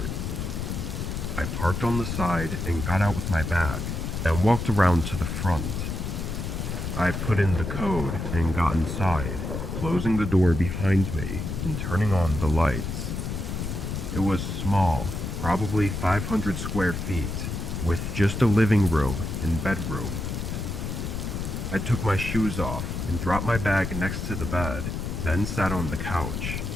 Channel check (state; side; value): noise; left; rumble, 4 dB below the sound